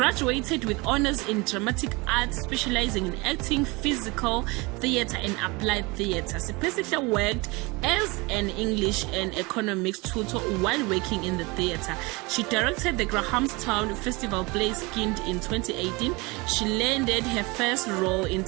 with honors in dramatic arts, specializing in acting, physical theater, and applied theater. Siphesihle worked as an English and economics tutor while working in the theater. She directed the Grahamstown Festival play Skinned in 2018. She landed her first role in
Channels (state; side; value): quieter; left; 25.5 dB